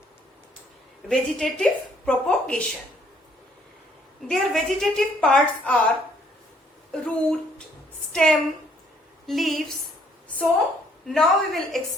vegetative propagation. Their vegetative parts are root, stem, leaves. So now we will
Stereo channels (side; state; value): both; normal; correlation 0.64